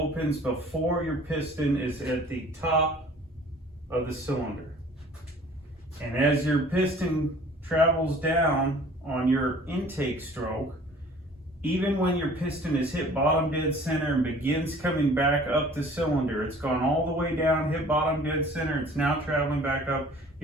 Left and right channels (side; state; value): both; normal; correlation 0.49